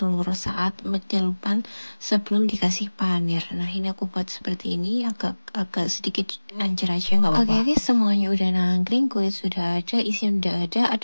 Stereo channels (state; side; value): inverted; both; correlation -1.00